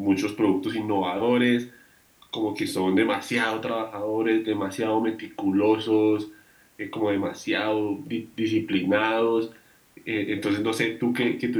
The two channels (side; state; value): both; identical; correlation 1.00